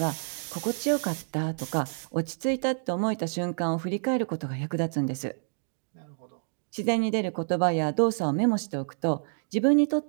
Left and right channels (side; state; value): left; silent; digital silence